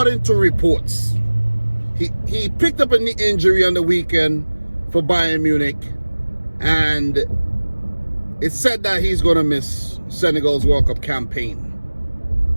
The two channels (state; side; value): inverted; both; correlation -1.00